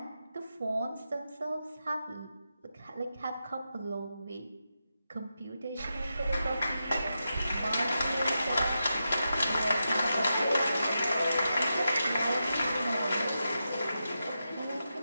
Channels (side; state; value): both; inverted; correlation -0.88